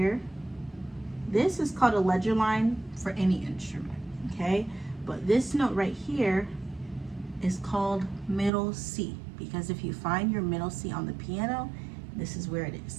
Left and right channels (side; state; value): left; drops out; at 8.5 s